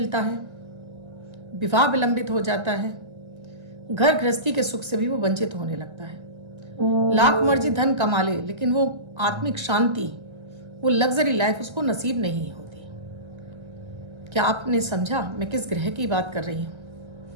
है, विवाह विलंबित हो जाता है, घर गृहस्थी के सुख से भी वो वंचित होने लगता है। लाख मर्जी धन कमा ले, लेकिन वो आत्मिक शांति, वो लग्जरी लाइफ उसको नसीब नहीं होती। क्या आपने समझा मैं किस ग्रह की बात कर रही हूँ?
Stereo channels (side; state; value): left; late; 1.3 ms